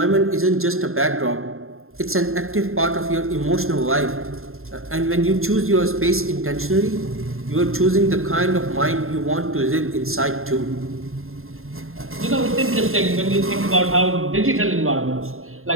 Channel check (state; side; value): late; left; 0.61 ms